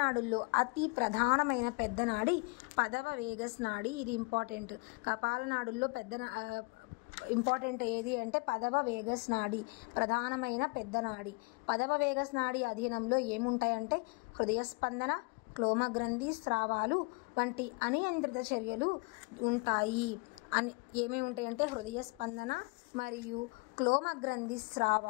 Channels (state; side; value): quieter; right; 29.0 dB